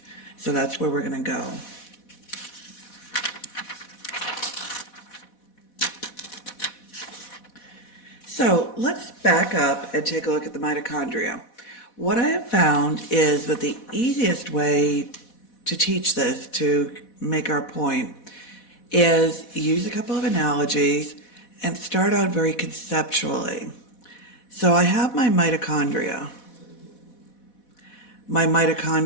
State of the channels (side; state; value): right; late; 4.1 ms